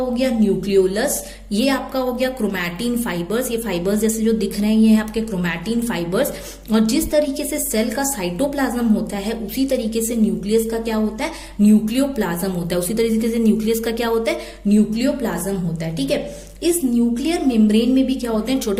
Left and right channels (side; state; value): both; identical; correlation 1.00